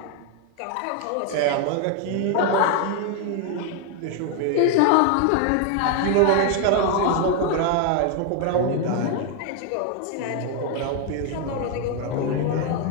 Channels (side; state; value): both; different; correlation 0.01